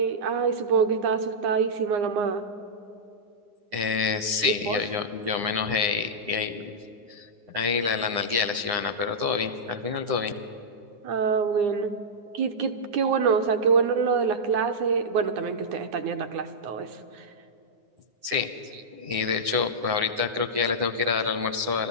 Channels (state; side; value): late; left; 9.7 ms